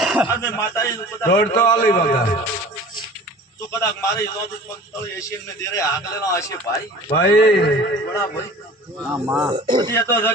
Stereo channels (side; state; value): both; normal; correlation 0.43